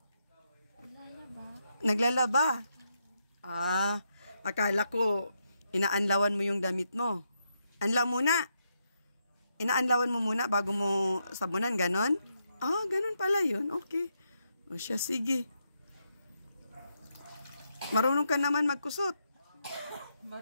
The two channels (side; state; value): both; inverted; correlation -0.81